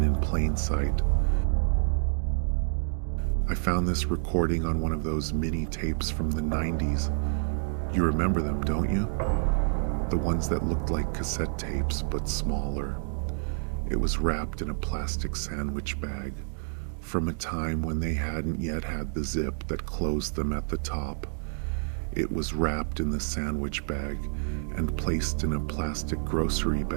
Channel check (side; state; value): left; silent; digital silence